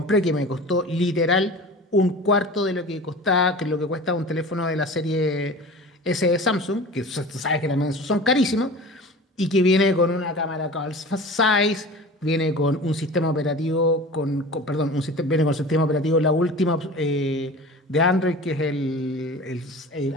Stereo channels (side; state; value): both; normal; correlation 0.37